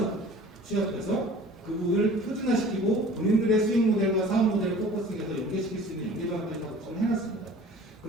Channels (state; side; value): normal; both; correlation 0.45